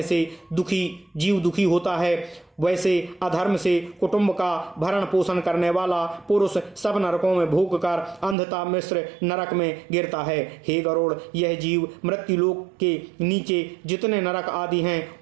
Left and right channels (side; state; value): left; drops out; at 8.3 s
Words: से जीव दुखी होता है, वैसे अधर्म से कुटुंब का भरण पोषण करने वाला पुरुष सब नरकों में भोग कर अंधता मिश्र नरक में गिरता है। हे गरुड़, यह जीव मृत्युलोक के नीचे जितने नरक आदि हैं